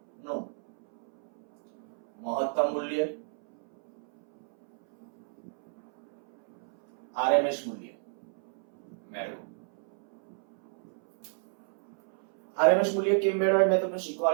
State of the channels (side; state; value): left; silent; 57 dB below the other